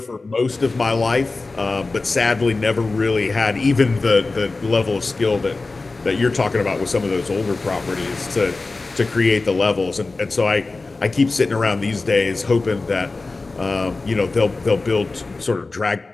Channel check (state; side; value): quieter; right; 3.6 dB